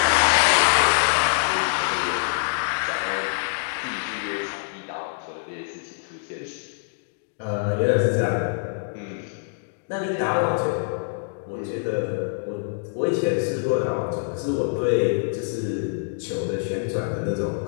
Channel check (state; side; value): silent; right; digital silence